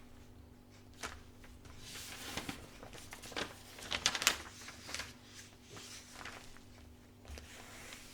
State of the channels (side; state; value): both; identical; correlation 1.00